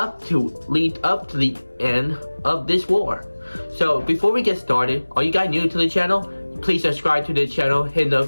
to the end of this war. So before we get started, are you guys new to the channel? Please subscribe to this channel, hit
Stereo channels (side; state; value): both; inverted; correlation -1.00